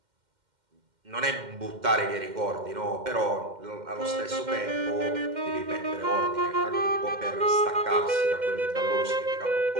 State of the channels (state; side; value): late; left; 2.1 ms